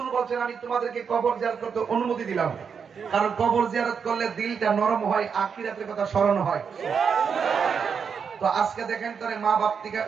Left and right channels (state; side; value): quieter; left; 6.4 dB